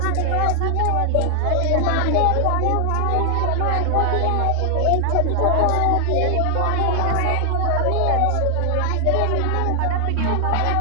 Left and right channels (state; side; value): different; both; correlation 0.00